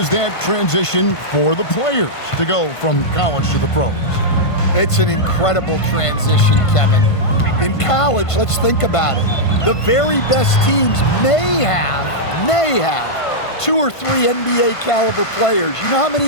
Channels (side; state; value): right; late; 1.5 ms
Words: that transition for the players to go from college to the pros? It's an incredible transition, Kevin. In college, let's think about it. The very best teams may have 2 or 3 NBA caliber players. You know how many